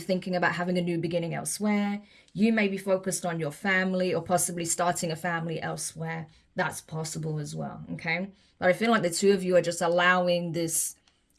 about having a new beginning elsewhere. You may be focused on your family or possibly starting a family elsewhere. That's possible as well, okay? But I feel like the two of you are just allowing this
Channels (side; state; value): both; identical; correlation 1.00